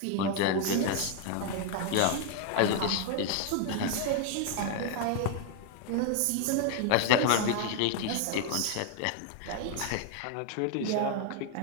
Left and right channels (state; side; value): different; both; correlation 0.01